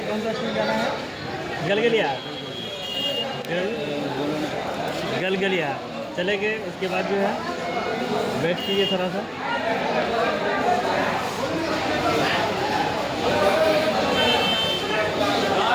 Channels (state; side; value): identical; both; correlation 1.00